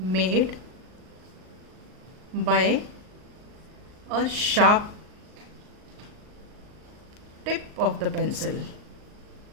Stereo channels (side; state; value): left; late; 39 ms